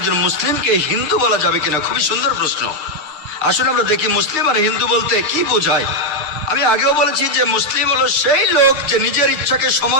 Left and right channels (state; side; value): late; left; 6.6 ms